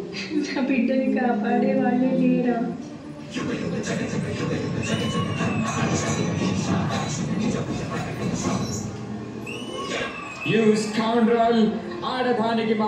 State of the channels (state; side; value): identical; both; correlation 1.00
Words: నా బిడ్డని కాపాడే వాళ్ళే లేరా? You scoundrel! ఆడదానికి